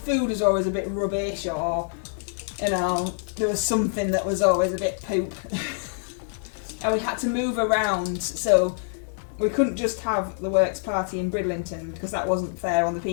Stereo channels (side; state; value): right; silent; digital silence